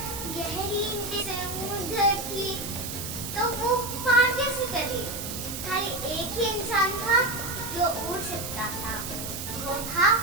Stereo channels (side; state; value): right; noise; hiss, 7 dB below the sound